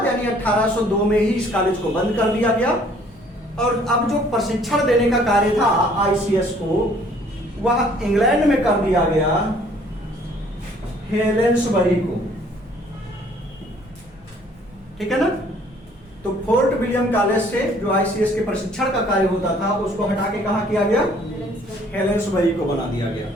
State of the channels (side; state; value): both; normal; correlation 0.58